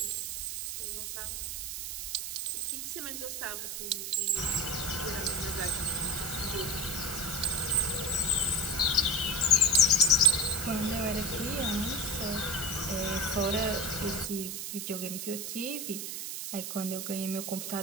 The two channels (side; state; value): right; noise; hiss, 5 dB below the sound